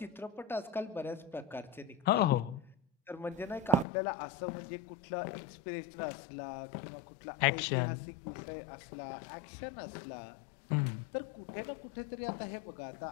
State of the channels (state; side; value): drops out; right; at 3.9 s